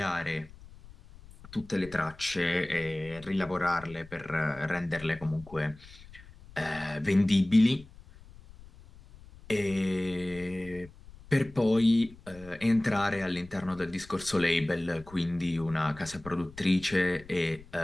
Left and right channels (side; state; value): left; noise; rumble, 20 dB below the sound